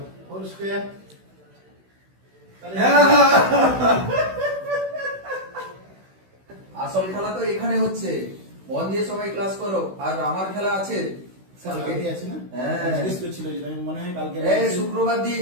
আসল খেলা তো এখানে হচ্ছে, মন দিয়ে সবাই ক্লাস করো। আর আমার খেলা আছে শুক্রবার দিন,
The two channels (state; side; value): late; left; 16 ms